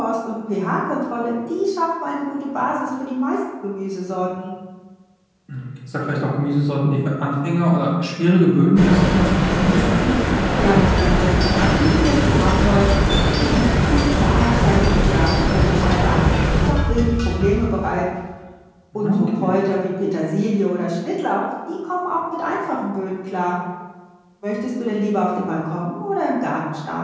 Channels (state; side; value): identical; both; correlation 1.00